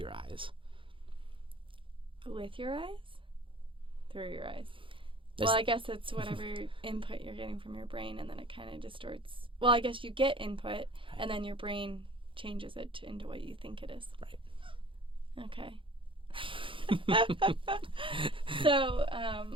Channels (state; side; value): late; left; 0.25 ms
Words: eyes? With your eyes? Through your eyes. Well, I guess it's whatever input you're getting from your brain, and then it kind of distorts. Well, I guess you get input, and then your brain changes it into what you think it is. Right. Okay. So,